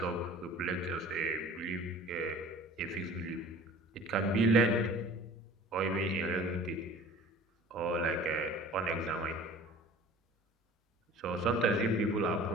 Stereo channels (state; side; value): normal; both; correlation 0.45